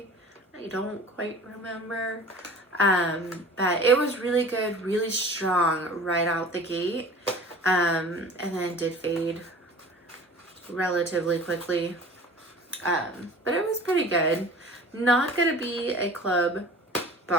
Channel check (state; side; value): normal; both; correlation 0.42